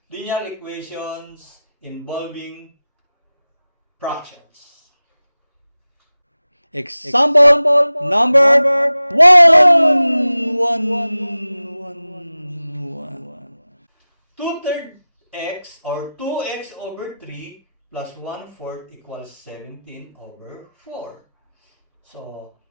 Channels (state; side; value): inverted; both; correlation -0.95